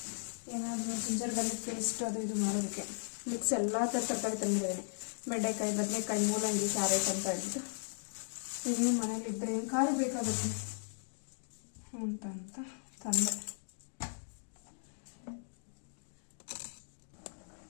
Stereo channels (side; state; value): right; silent; digital silence